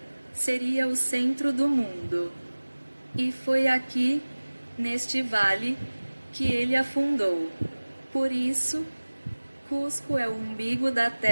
seria o centro do mundo. E foi aqui, neste vale, que ele afundou. Por isso, Cusco é o umbigo da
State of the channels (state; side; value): inverted; both; correlation -1.00